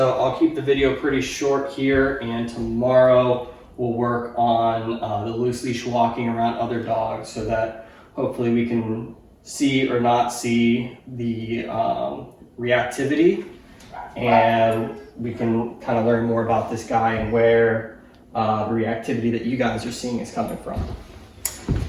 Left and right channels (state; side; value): identical; both; correlation 1.00